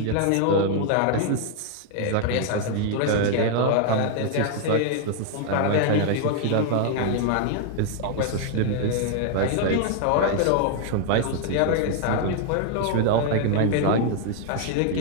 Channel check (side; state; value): both; different; correlation 0.00